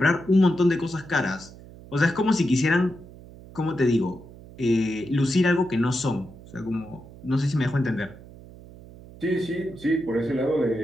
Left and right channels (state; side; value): noise; right; hum, 19 dB below the sound